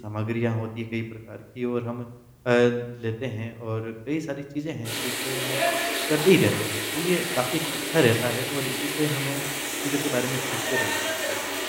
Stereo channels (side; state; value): both; identical; correlation 1.00